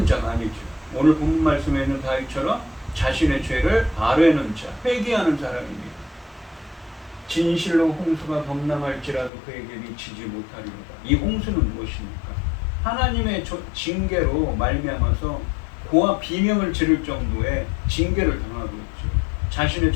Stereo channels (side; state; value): right; drops out; at 9.3 s